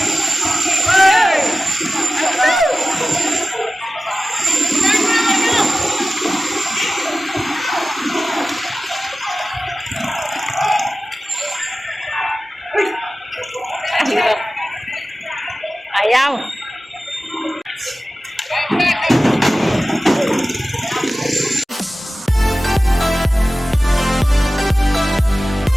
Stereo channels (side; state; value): both; normal; correlation 0.96